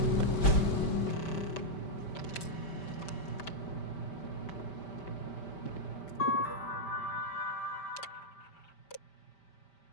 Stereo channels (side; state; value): right; late; 5.1 ms